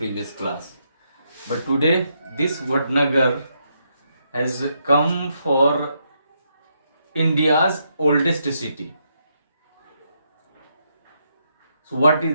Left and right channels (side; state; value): both; inverted; correlation -0.78